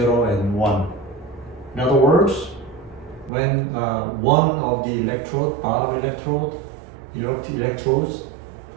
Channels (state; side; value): drops out; left; at 3.3 s